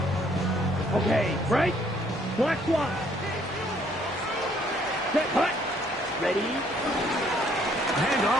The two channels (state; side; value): normal; both; correlation 0.64